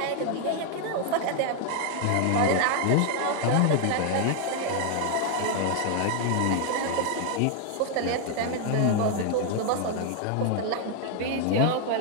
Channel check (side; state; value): both; different; correlation 0.00